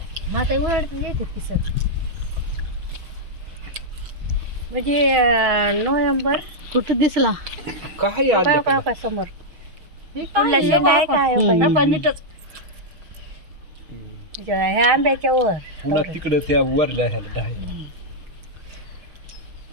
मग आता उन्हाळ्यात येते पिसत म्हणजे नोव्हेंबर कुठं दिसला काय काय काय काय समोर पुढला शेंडा आहे काय नीटच ह्या आंब्याच्या वर पुन्हा तिकडं त्या वरल्या ह्याला डायला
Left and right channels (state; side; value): late; left; 6.2 ms